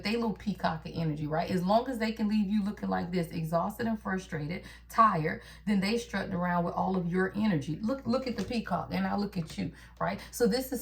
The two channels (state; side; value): identical; both; correlation 1.00